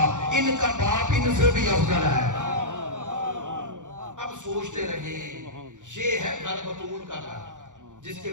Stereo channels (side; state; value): left; late; 0.86 ms